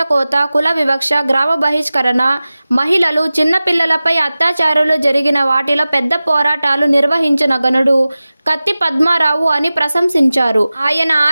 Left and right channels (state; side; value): inverted; both; correlation -0.97